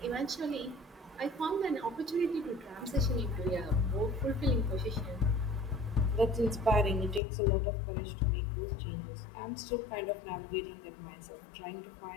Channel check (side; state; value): right; drops out; at 7.2 s